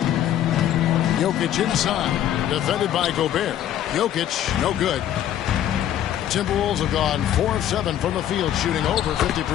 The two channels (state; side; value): quieter; right; 11.2 dB